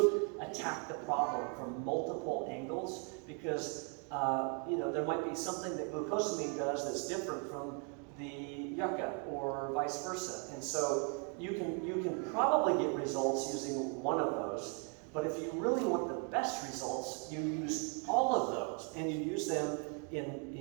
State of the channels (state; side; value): quieter; left; 37.7 dB